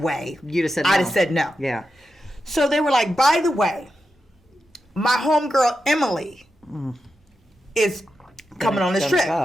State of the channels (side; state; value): both; normal; correlation 0.88